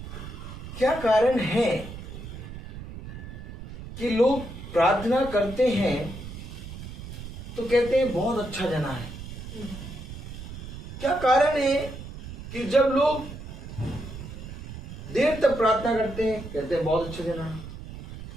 क्या कारण है कि लोग प्रार्थना करते हैं तो कहते हैं बहुत अच्छा जना है? क्या कारण है कि जब लोग देर तक प्रार्थना करते हैं कहते हैं बहुत अच्छा जना है?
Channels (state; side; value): noise; right; rumble, 11 dB below the sound